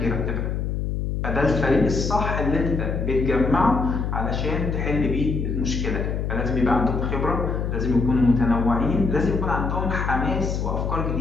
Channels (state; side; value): noise; left; hum, 1 dB below the sound